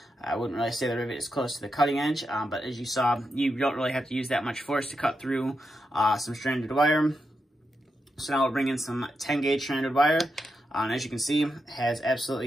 I wouldn't really say the rivet is close to the cutting edge, but as you saw, you don't really have to use that much force to cut through some stranded wire. So now we'll bring in some 10 gauge stranded wire, and as you can see, has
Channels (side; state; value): both; normal; correlation 0.86